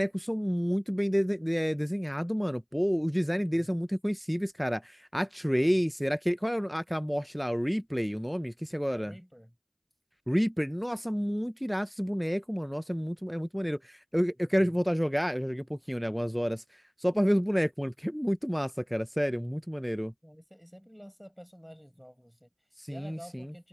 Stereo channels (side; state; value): both; identical; correlation 1.00